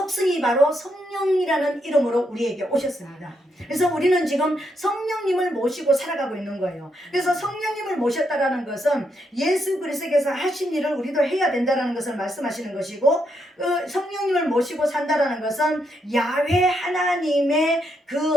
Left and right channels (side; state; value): both; normal; correlation 0.79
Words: 바로 성령이라는 이름으로 우리에게 오셨습니다. 그래서 우리는 지금 성령님을 모시고 살아가고 있는 거예요. 그래서 성령님을 모셨다라는 것은 예수 그리스도께서 하신 일을 우리도 해야 된다라는 것을 말씀하시는 것이고, 성령님을 모시고 산다라는 것은 야훼 하나님의 그